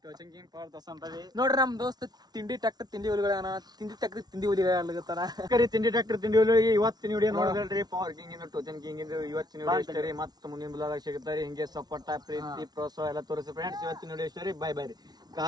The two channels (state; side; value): late; left; 0.19 ms